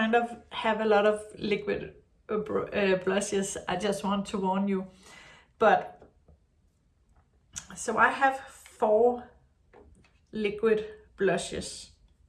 of have a lot of liquid blushes, I just want to warn you. But, so I have 4 liquid blushes.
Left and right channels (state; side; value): identical; both; correlation 1.00